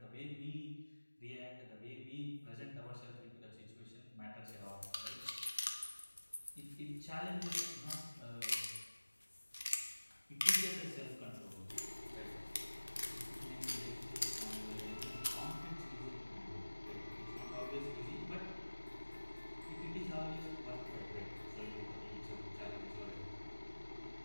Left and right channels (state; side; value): inverted; both; correlation -1.00